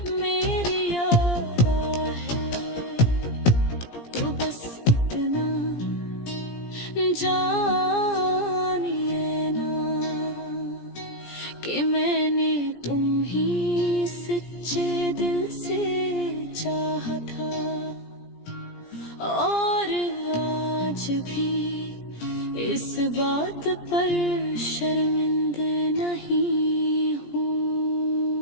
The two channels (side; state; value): right; late; 17 ms